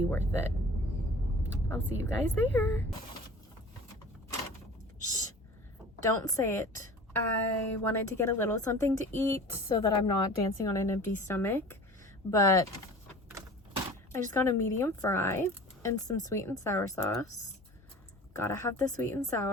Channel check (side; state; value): both; normal; correlation 0.41